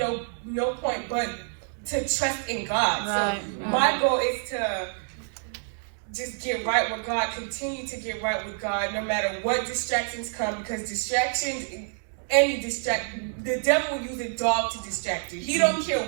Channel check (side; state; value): left; silent; digital silence